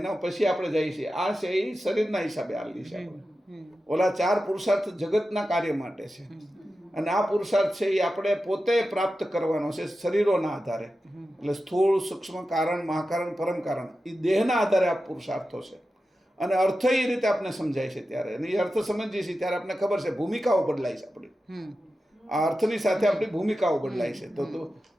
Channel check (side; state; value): both; normal; correlation 0.92